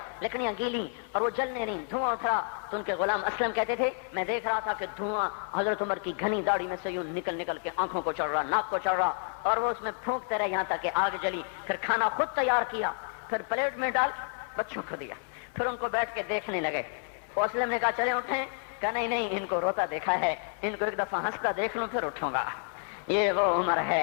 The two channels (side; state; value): right; silent; 58 dB below the other